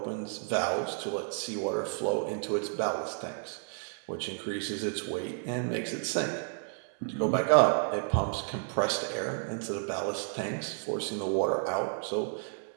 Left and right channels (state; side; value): silent; left; 57 dB below the other